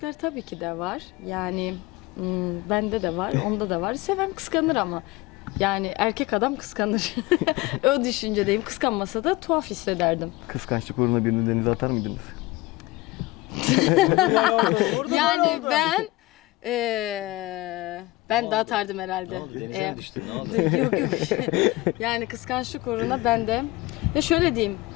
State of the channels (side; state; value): right; quieter; 19.9 dB